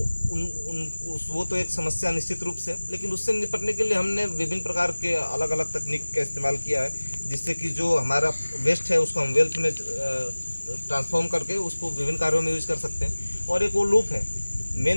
वो तो एक समस्या निश्चित रूप से, लेकिन उससे निपटने के लिए हमने विभिन्न प्रकार के अलग अलग तकनीक का इस्तेमाल किया है, जिससे कि जो हमारा वेस्ट है उसको हम वेल्थ में ट्रांसफॉर्म करके उसको विभिन्न कार्यों में यूज कर सकते हैं। और एक वो लूप है,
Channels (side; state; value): both; inverted; correlation -1.00